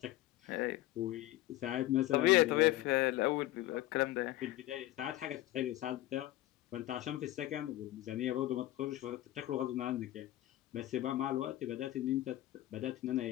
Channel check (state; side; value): quieter; right; 15.7 dB